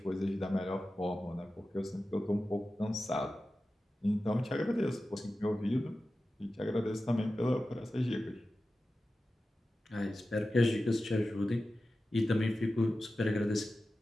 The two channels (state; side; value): normal; both; correlation 0.94